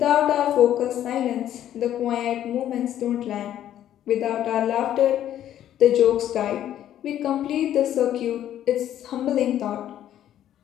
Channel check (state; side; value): quieter; right; 11.4 dB